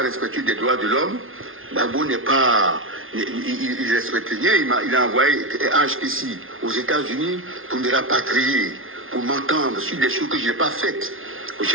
des droits de l'homme, Gbagbo n'est pas... Il respecte rien, il a envoyé H ici aux États-Unis pour me rapatrier, pour m'entendre sur des choses que je n'ai pas faites.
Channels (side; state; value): left; late; 0.60 ms